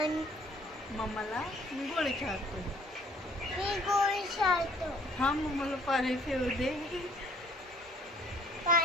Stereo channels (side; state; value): both; normal; correlation 0.58